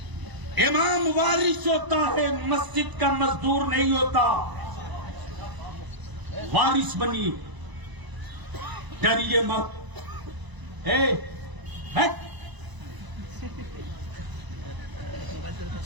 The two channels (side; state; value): left; late; 1.0 ms